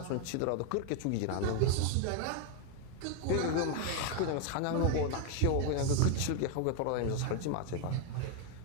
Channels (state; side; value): different; both; correlation 0.01